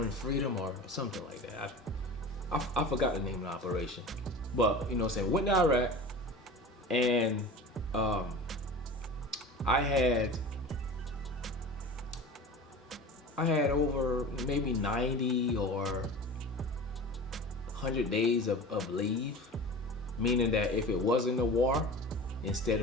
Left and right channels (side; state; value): both; normal; correlation 0.35